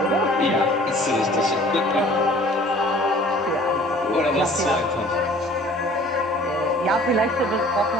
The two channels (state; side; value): normal; both; correlation 0.51